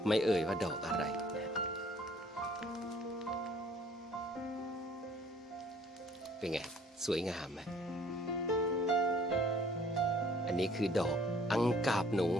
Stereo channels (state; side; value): normal; both; correlation 0.57